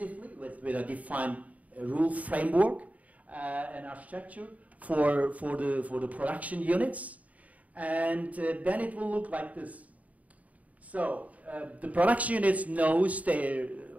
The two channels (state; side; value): late; left; 0.071 ms